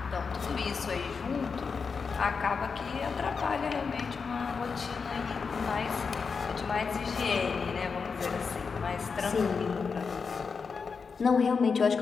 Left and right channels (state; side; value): quieter; right; 5.3 dB